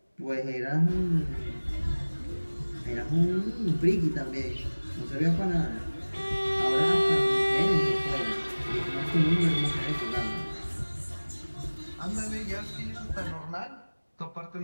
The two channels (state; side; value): inverted; both; correlation -1.00